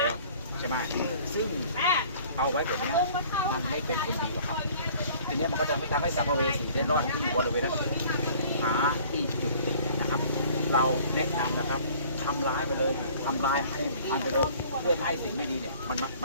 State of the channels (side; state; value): both; inverted; correlation -0.51